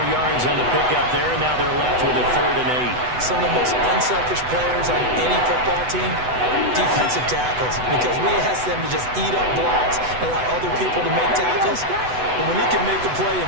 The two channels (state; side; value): late; left; 8.0 ms